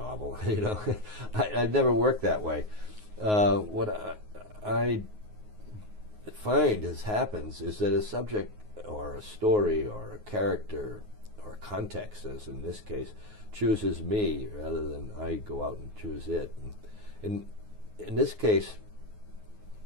I've never worked that way. What I find happens is that a subject or a story or a character or a context, as in this case, chooses me rather than I go out and choose it. And in this case,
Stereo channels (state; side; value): late; left; 9.5 ms